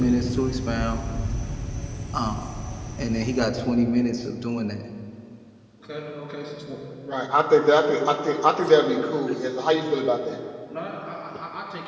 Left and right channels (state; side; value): identical; both; correlation 1.00